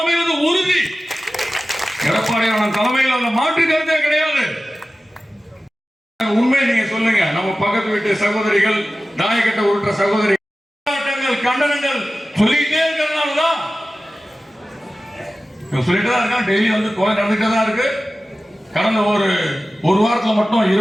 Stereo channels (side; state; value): both; normal; correlation 0.95